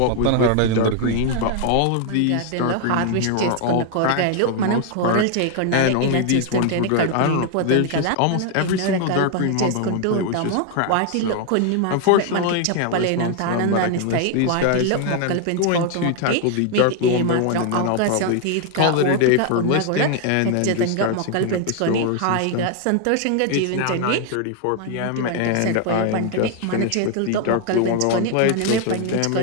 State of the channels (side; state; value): both; different; correlation 0.01